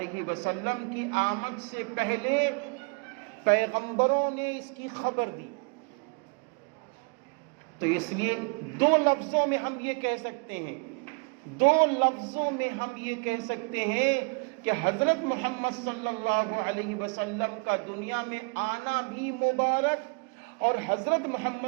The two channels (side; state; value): left; quieter; 33.7 dB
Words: وسلم کی آمد سے پہلے پیغمبروں نے اس کی خبر دی، تو اس لیے 2 لفظوں میں ہم یہ کہہ سکتے ہیں، 2 لفظوں میں ہم یہ کہہ سکتے ہیں کہ حضرت محمد صلی اللہ علیہ وسلم کا دنیا میں آنا بھی مبارک، اور حضرت